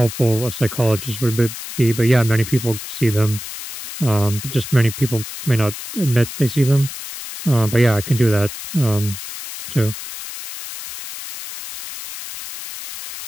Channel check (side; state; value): left; noise; hiss, 10 dB below the sound